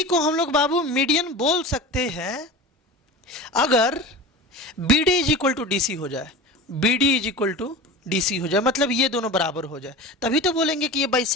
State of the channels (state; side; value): normal; both; correlation 0.32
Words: को हम लोग बाबू मीडियन बोल सकते हैं अगर B D is equal to D C हो जाए, B D is equal to D C हो जाए, मतलब ये दोनों बराबर हो जाए, तभी तो बोलेंगे कि ये